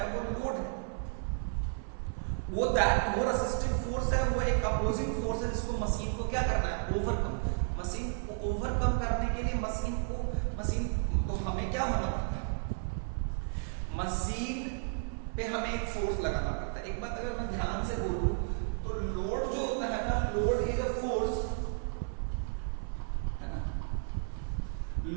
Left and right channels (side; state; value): left; silent; 55 dB below the other